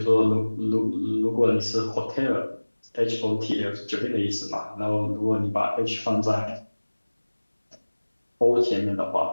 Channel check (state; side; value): inverted; both; correlation -1.00